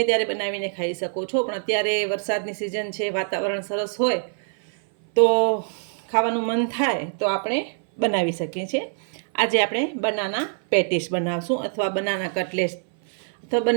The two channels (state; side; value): silent; left; 58 dB below the other